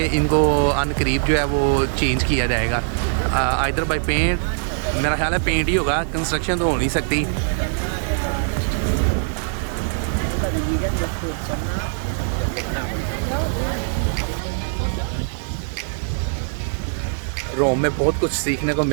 इनको अनकरीब जो है वो चेंज किया जाएगा, आइदर बाय पेंट। मेरा ख्याल है पेंट ही होगा, कंस्ट्रक्शन तो हो नहीं सकती। रोम में बहुत कुछ सीखने को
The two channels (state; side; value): silent; left; 63 dB below the other